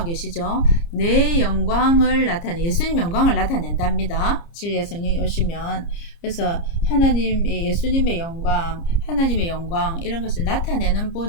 계시죠? 내 영광을 예수님 영광을 나타낸답니다. 진리의 성령이 오시면. 그래서 예수님의 영광, 하나님의 영광, 이런 것을 나타내는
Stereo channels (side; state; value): right; late; 29 ms